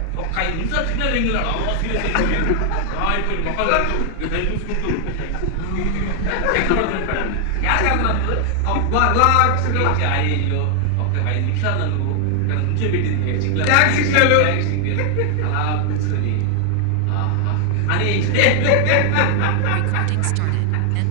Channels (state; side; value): different; both; correlation 0.00